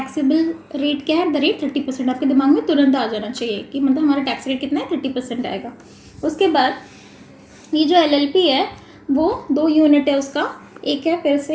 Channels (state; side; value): identical; both; correlation 1.00